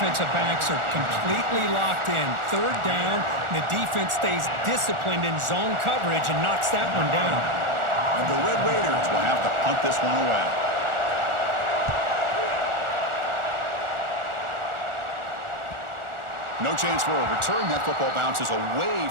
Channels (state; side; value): late; left; 1.4 ms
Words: backs are completely locked in. Third down, and the defense stays disciplined in zone coverage and knocks that one down. And the Red Raiders will have to punt this one away. No chance for a return. That football bounces